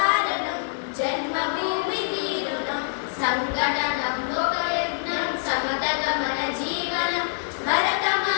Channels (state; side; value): silent; right; digital silence